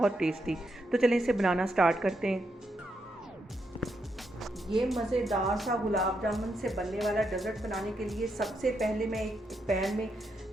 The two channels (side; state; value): both; normal; correlation 0.81